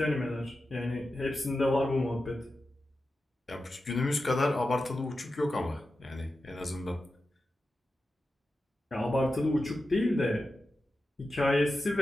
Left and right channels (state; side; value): normal; both; correlation 0.92